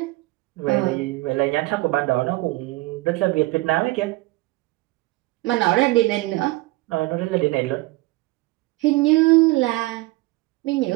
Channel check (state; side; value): quieter; left; 20.7 dB